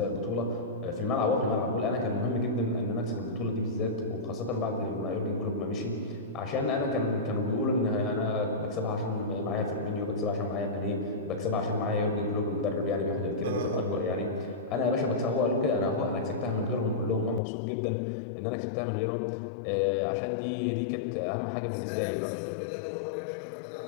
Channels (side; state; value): right; drops out; at 17.4 s